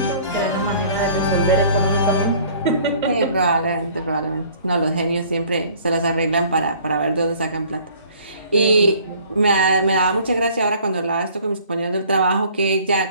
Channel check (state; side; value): inverted; both; correlation -0.54